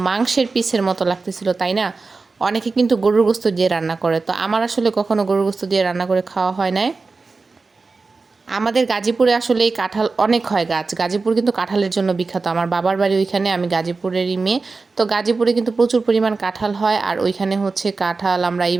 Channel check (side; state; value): left; quieter; 4.0 dB